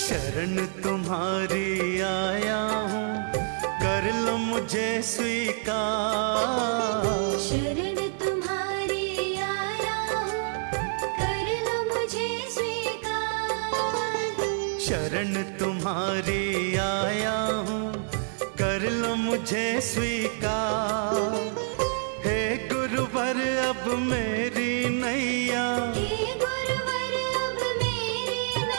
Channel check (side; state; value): left; silent; 60 dB below the other